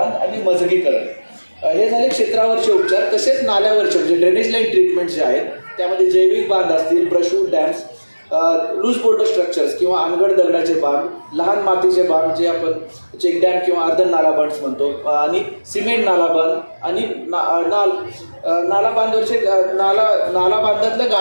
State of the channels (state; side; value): inverted; both; correlation -1.00